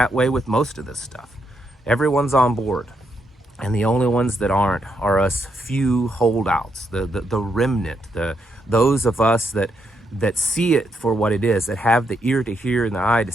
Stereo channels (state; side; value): normal; both; correlation 0.79